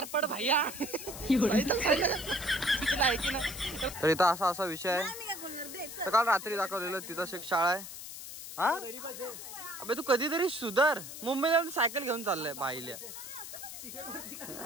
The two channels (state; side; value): noise; left; hiss, 11 dB below the sound